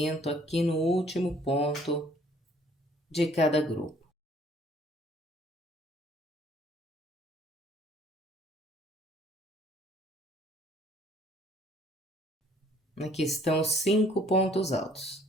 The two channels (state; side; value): normal; both; correlation 0.59